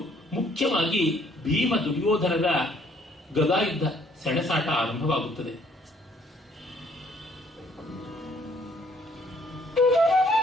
ಮುಖ್ಯವಾಗಿ ಭೀಮ ದುರ್ಯೋಧನರ ಗದಾಯುದ್ಧ ಸೆಣಸಾಟ ಆರಂಭವಾಗುತ್ತದೆ.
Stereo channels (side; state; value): both; normal; correlation 0.63